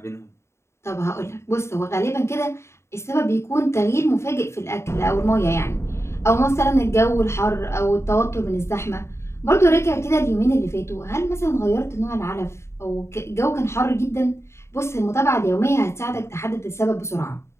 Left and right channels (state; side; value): late; right; 0.13 ms